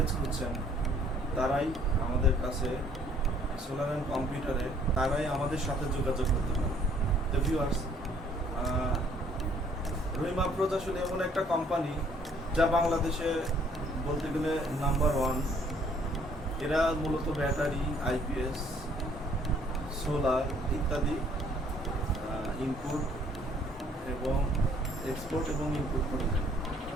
খুঁজছেন তারাই আমাদের কাছে সোলার অ্যান্ড কম্পিউটারে তারাই আমাদের সাথে যোগাযোগ করতে পারে। তো ভিউয়ার্স, রহিমা প্রোজ আসলে এমন একটা কোম্পানি যা বাংলাদেশে বলতে গেলে নাম্বার 1। এরা মূলত ব্যাটারি, আইপিএস, সোলার ইত্যাদি ইনপুট এবং এক্সপোর্ট এবং ইনপুট করে থাকে।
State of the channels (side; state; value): both; normal; correlation 0.61